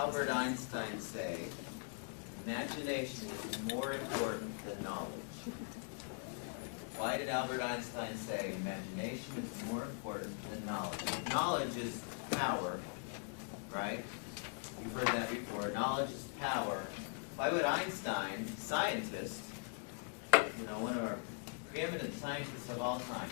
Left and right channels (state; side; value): silent; right; 50 dB below the other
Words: Einstein say imagination is more important than knowledge? Why did Albert Einstein say imagination is more important than knowledge? Knowledge is power, right? You've heard that before. Knowledge is power. Why would Einstein, scientist, one of our preeminent scientists of all time,